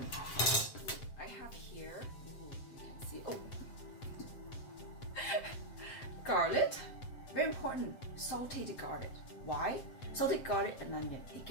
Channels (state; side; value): late; right; 7.6 ms